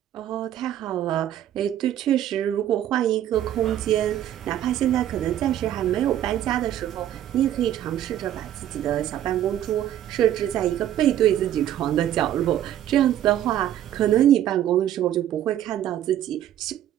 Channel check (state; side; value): quieter; left; 11.7 dB